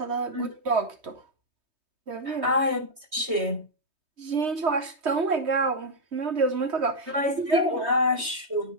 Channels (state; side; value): late; left; 3.2 ms